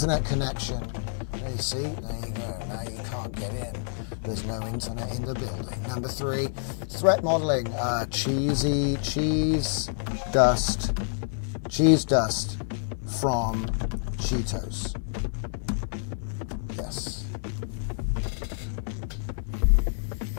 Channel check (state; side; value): silent; right; digital silence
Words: connection. There you see, there you go. Now you can't get in. There's no internet in the building. Number three, threat modeling. Cheese dust from Cheetos. Yes.